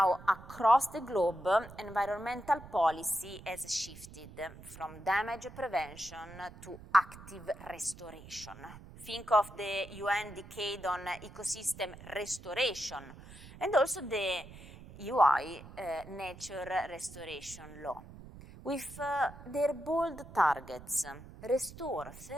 across the globe, environmental policy has shifted from damage prevention to active restoration. Think of the UN Decade on Ecosystem Restoration and also the UI Nature Restoration Law. With their bold targets, restore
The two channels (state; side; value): noise; right; rumble, 17 dB below the sound